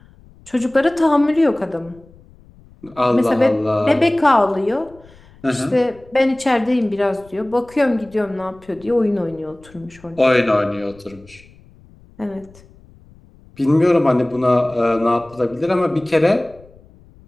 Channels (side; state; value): left; noise; rumble, 26 dB below the sound